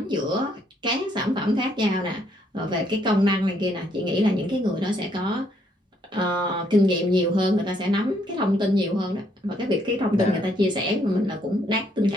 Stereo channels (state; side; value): normal; both; correlation 0.70